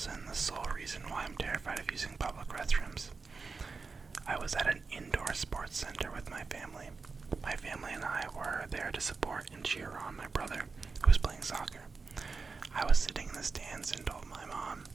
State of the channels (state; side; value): quieter; left; 4.5 dB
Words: and the sole reason why I'm terrified of using public restrooms. I was at an indoor sports center with my family. My family and I were there to support and cheer on my brother, who was playing soccer. I was sitting in the stands and told my mom